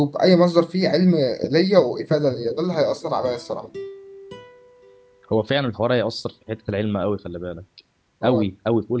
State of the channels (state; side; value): identical; both; correlation 1.00